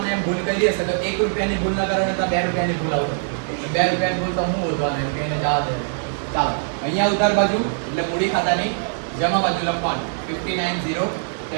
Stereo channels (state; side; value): silent; left; 64 dB below the other